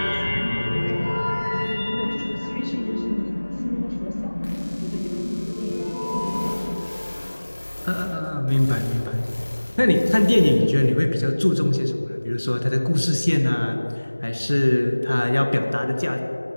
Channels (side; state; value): both; inverted; correlation -1.00